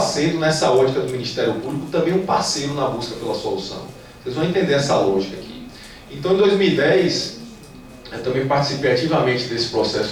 nessa ótica do Ministério Público, também um parceiro na busca pela solução. Vocês vão entender essa lógica aqui. Então, em 2010, eu também participei ativamente desse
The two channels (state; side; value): identical; both; correlation 1.00